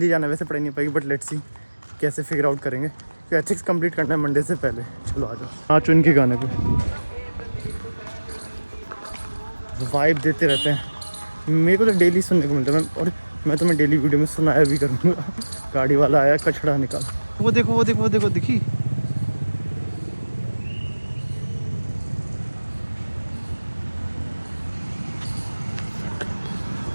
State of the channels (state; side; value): inverted; both; correlation -1.00